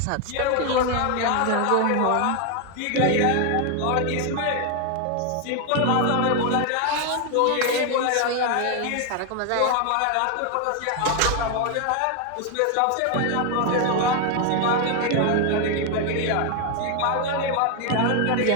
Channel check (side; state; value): both; different; correlation 0.01